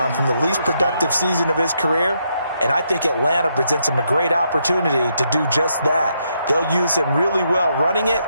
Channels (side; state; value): both; inverted; correlation -0.78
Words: from the least productive season of his career. And I think Atlanta presents him a great opportunity to do just that. They'll use him really well running it